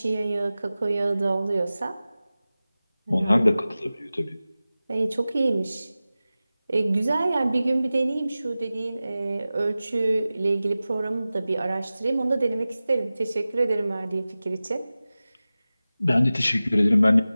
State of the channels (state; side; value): inverted; both; correlation -0.96